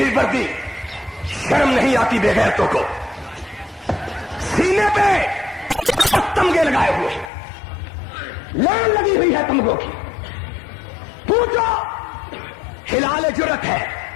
وردی, شرم نہیں آتی بے غیرتوں کو. سینے پہ تمغے لگائے ہوئے, لائن لگی ہوئی ہے تمغوں کی. پوچھو, ہلال جرت ہے,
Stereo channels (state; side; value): drops out; right; at 7.3 s